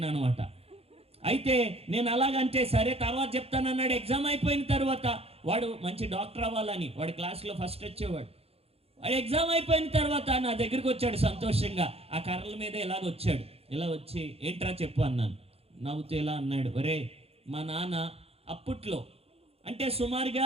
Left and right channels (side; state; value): left; late; 0.29 ms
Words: అనమాట. అయితే నేను అలాగంటే సరే తర్వాత చెప్తానన్నాడు. ఎగ్జామ్ అయిపోయిన తర్వాత వాడు మంచి డాక్టర్ అవ్వాలని, వాడి క్లాస్లో ఫస్ట్ వచ్చేవాడు. వాడు ఎగ్జామ్ అయిపోయిన తర్వాత నా దగ్గరికి వచ్చాడు సంతోషంగా. ఆ కర్రల మీద ఇలాగ వచ్చాడు. ఇలా వచ్చి ఏంట్రా చెప్పు అన్నాను. నవ్వుతూ ఇలా అన్నాడు, ఒరే మా నాన్న అప్పట్లో అంటే